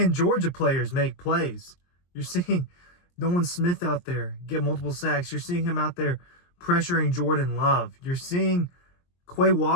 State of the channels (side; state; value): right; late; 23 ms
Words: Georgia players make plays. You're seeing Nolan Smith out there get multiple sacks. You're seeing him out there pressuring Jordan Love. You're seeing Quay